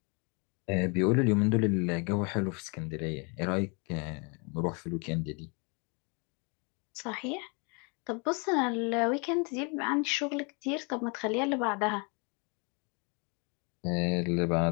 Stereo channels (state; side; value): quieter; right; 33.0 dB